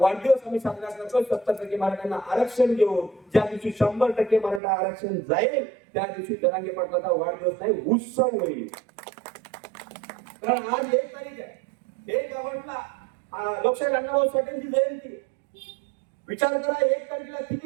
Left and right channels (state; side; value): drops out; left; at 4.6 s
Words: आम्ही साजरा करतो 70% मराठ्यांना आरक्षण देऊन. ज्या दिवशी 100% मराठा आरक्षण जाईल त्या दिवशी जरांगे पाटलाचा वाढदिवस नाही उत्सव होईल. कारण आज 1 तारीख आहे, 1 ऑगस्टला लोकशाहीर अण्णाभाऊ साठेंची जयंती. विचार करा 1 तारखेला